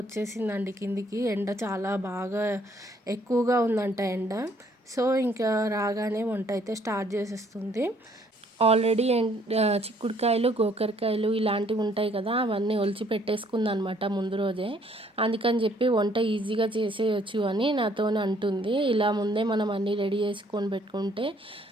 వచ్చేసిందండి కిందికి. ఎండ చాలా బాగా ఎక్కువగా ఉందంట ఎండ. సో ఇంకా రాగానే వంట అయితే స్టార్ట్ చేసేస్తుంది. ఆల్రెడీ చిక్కుడుకాయలు గోకరకాయలు ఇలాంటివి ఉంటాయి కదా, అవన్నీ ఒలిచి పెట్టేసుకుందనమాట ముందు రోజే. అందుకని చెప్పి వంట ఈజీగా చేసేయచ్చు అని నాతో అంటుంది. ఇలా ముందే మనం అన్నీ రెడీ చేసుకొని పెట్టుకుంటే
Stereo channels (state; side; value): normal; both; correlation 0.64